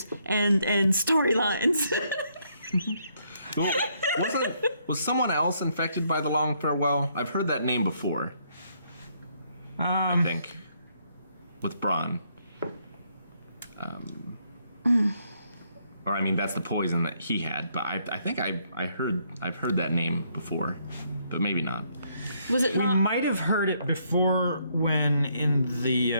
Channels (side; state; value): both; inverted; correlation -0.72